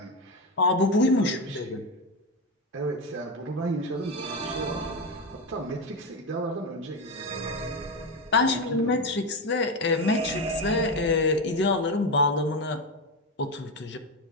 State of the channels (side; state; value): both; normal; correlation 0.14